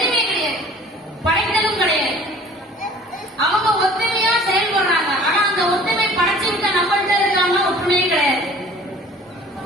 கிடையாது, படைத்தலும் கிடையாது. அவங்க ஒத்துமையா செயல்படுறாங்க. ஆனா அந்த ஒத்துமை படைச்சு விட்ட நம்மள்கிட்ட இருக்காங்க ஒற்றுமையே கிடையாது.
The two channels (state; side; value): normal; both; correlation 0.48